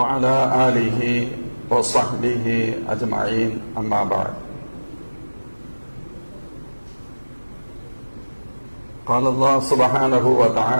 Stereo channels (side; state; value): both; inverted; correlation -1.00